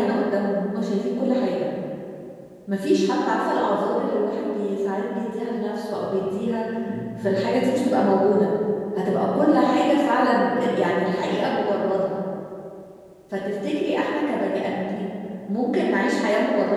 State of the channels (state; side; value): identical; both; correlation 1.00